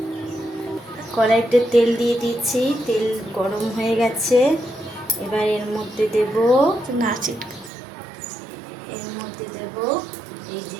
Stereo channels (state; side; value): drops out; left; at 7.7 s